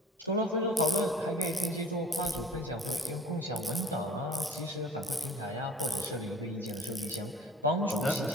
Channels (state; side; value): normal; both; correlation 0.47